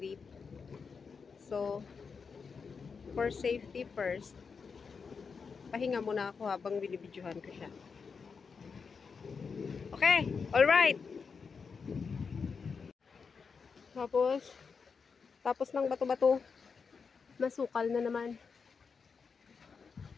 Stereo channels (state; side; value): quieter; right; 5.5 dB